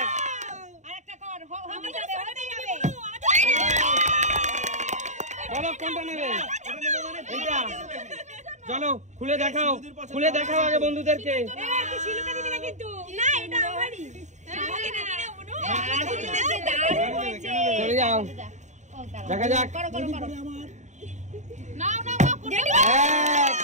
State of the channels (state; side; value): late; left; 0.34 ms